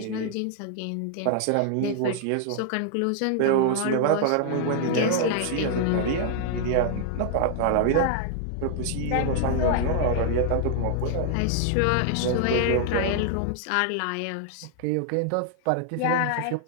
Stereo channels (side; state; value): both; different; correlation -0.01